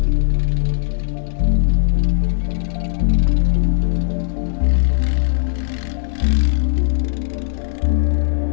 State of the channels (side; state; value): right; silent; digital silence